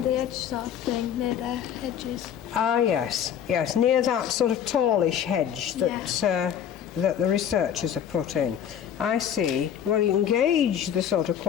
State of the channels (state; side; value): quieter; right; 9.1 dB